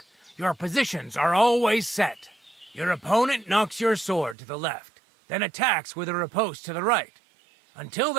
your positions are always set. Your opponent knocks your sword to the left, then attacks with a riposte to the right. Until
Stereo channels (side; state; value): left; drops out; at 4.4 s